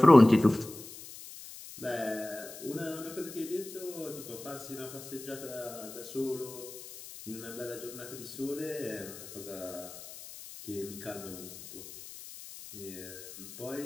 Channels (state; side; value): noise; left; hiss, 14 dB below the sound